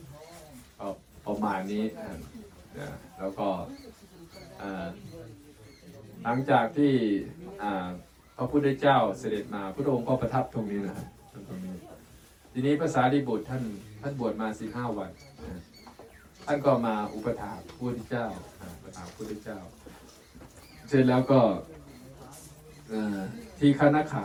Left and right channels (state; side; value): identical; both; correlation 1.00